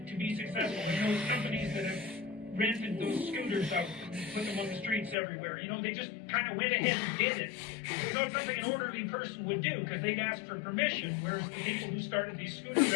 be successful. And those companies that have rented those scooters out and put them on the streets everywhere, they just kind of went ahead and did it. It's something an orderly person would do, because they'd ask for permission, whereas the people who started these scooter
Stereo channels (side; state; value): right; drops out; at 5.2 s